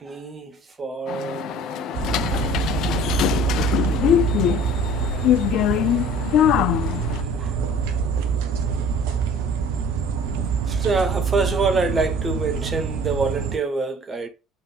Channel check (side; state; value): both; normal; correlation 0.47